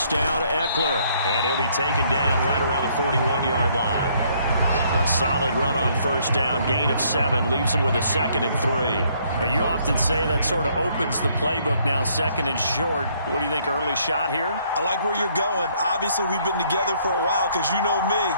down, Eckler. And he'll be taken down right around the 41-yard line. A solid run on 1st down, gain of 7, leaves him with a 2nd and 3. You often say that sort of opens the playbook now, 2nd and short. What do you think, early shot here? I like where you're going. Obviously, we've been together for a while because you know me.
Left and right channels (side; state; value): both; inverted; correlation -0.66